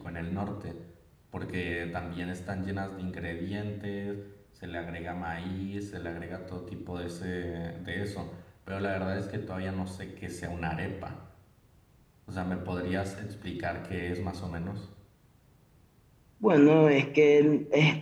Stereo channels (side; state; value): both; identical; correlation 1.00